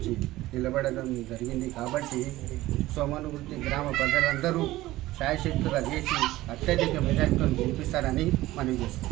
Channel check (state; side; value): quieter; left; 16.9 dB